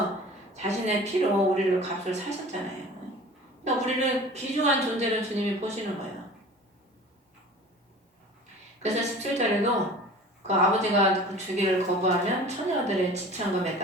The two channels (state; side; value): normal; both; correlation 0.42